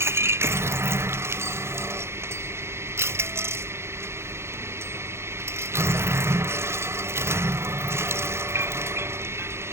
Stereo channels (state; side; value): late; left; 0.12 ms